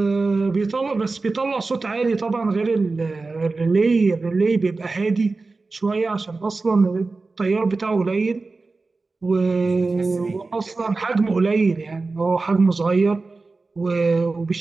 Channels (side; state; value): left; quieter; 3.7 dB